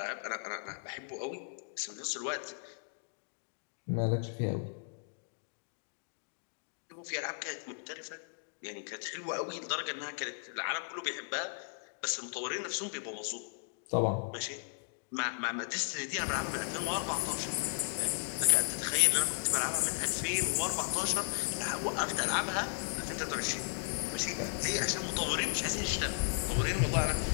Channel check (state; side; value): silent; right; digital silence